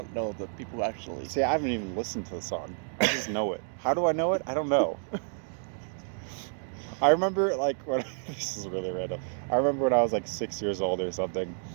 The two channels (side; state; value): left; silent; 58 dB below the other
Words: know the people who actually... See, I haven't even listened to the song. I just know it. How do I know it? I don't know. I remember, like, when... This is really random. I remember when I was, like, 6 years old or something.